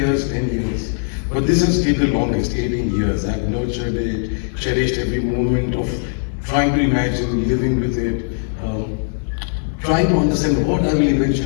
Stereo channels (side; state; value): right; silent; 66 dB below the other